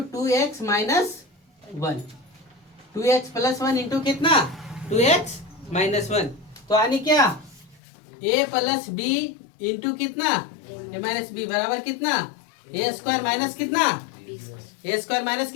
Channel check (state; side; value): drops out; right; at 7.8 s